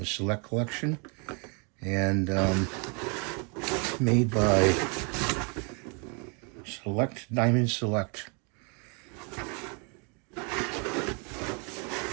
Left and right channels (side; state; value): left; quieter; 34.8 dB